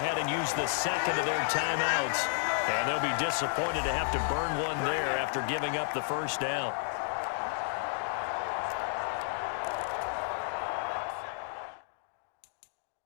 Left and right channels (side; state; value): right; silent; digital silence